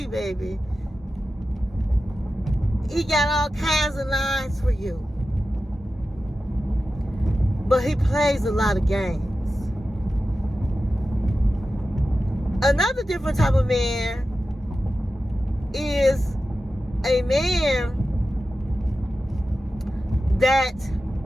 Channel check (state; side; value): normal; both; correlation 0.93